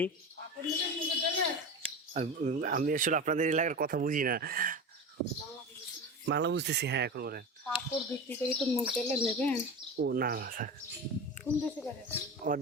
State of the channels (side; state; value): both; normal; correlation 0.27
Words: আমি আসলে আপনাদের এলাকার কথা বুঝি না, বাংলা বুঝতেছি। হ্যাঁ, এখন বলেন। কাপড় বিক্রি করে তো মুখ দিলে নেবেন? ও না না, থাক। কোন দেশে করে? ও